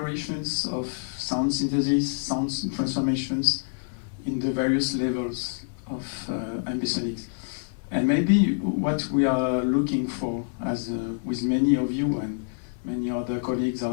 of sound synthesis, sound transformations in the various levels of ambisonics. And maybe what we are looking for, as with many of you and many other colleagues,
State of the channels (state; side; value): silent; right; digital silence